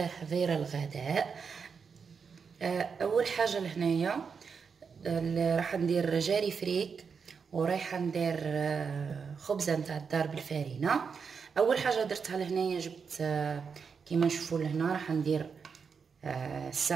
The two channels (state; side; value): quieter; left; 5.9 dB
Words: الغداء. أول حاجة لهنايا راح ندير جاري فريك، ورايحة ندير خبزة نتاع الدار بالفارينة. أول حاجة درتها لهنايا جبت كيما نشوفوا لهنا راح ندير